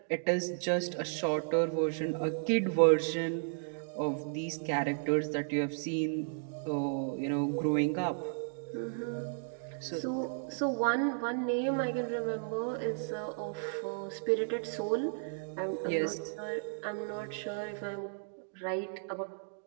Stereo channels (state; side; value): silent; left; digital silence